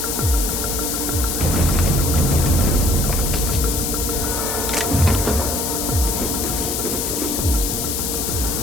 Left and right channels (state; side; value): noise; left; hiss, 1 dB below the sound